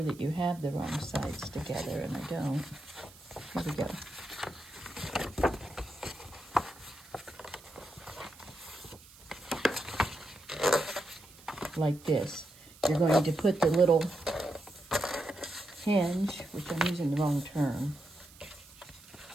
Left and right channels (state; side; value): noise; right; hiss, 22 dB below the sound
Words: that you have the wrong sides together, and I don't. Here we go. like this. You're going to put the little hinge, which I'm using the wrong term,